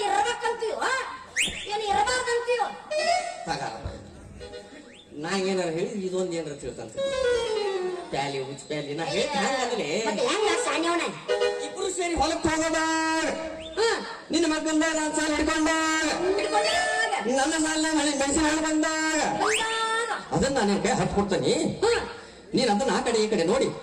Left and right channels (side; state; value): both; identical; correlation 1.00